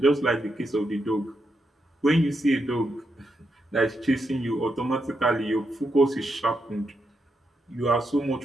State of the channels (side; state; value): both; normal; correlation 0.83